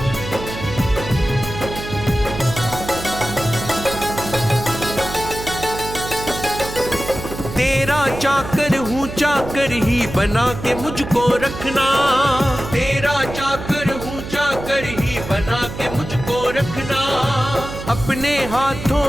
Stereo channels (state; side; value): noise; right; hum, 9 dB below the sound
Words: तेरा चाकर हूँ, चाकर ही बना के मुझको रखना। तेरा चाकर हूँ, चाकर ही बना के मुझको रखना। अपने